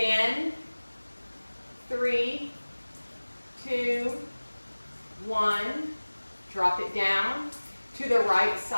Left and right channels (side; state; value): both; inverted; correlation -1.00